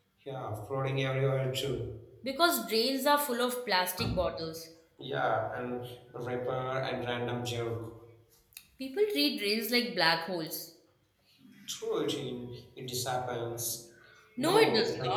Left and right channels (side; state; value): both; identical; correlation 1.00